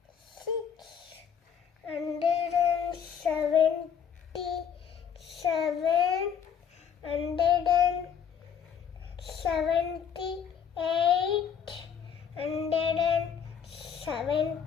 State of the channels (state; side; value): quieter; right; 7.8 dB